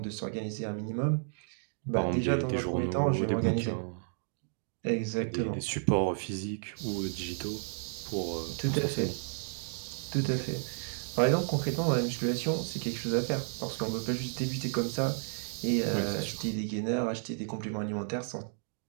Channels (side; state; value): left; silent; digital silence